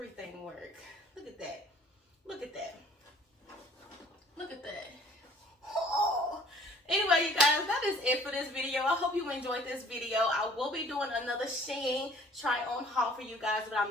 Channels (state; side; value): normal; both; correlation 0.53